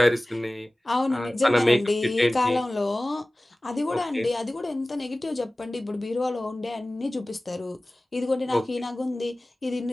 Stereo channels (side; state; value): both; normal; correlation 0.98